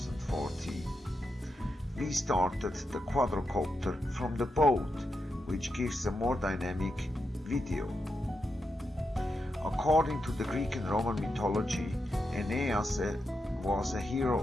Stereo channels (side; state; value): both; normal; correlation 0.85